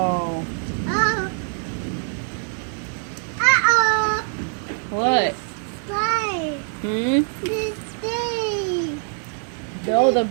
What? Hmm? Oh, the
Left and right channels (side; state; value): left; silent; 55 dB below the other